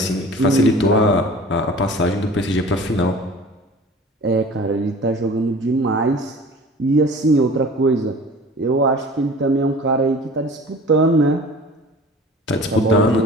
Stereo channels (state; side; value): normal; both; correlation 0.42